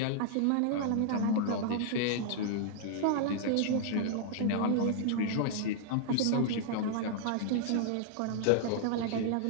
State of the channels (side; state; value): both; different; correlation -0.01